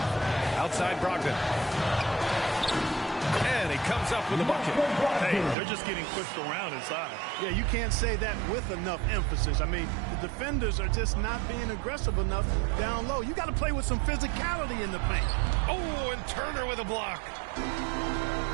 Outside Brogdon. And he comes up with a bucket. Hey, they're just getting pushed around inside. Yeah, you can't say that with enough emphasis. I mean, the defenders are just not being aggressive enough down low. You got to play with some physicality in the paint. Oh, and Turner with a block.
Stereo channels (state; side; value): drops out; left; at 5.6 s